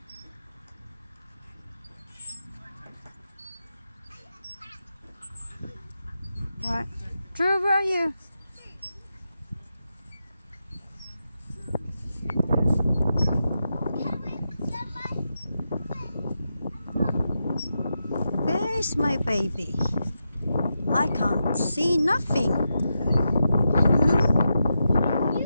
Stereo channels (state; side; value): inverted; both; correlation -0.87